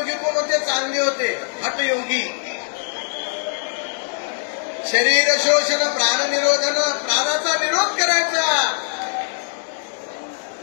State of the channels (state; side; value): silent; right; digital silence